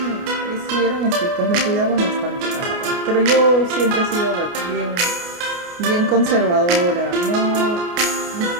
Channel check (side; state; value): left; late; 29 ms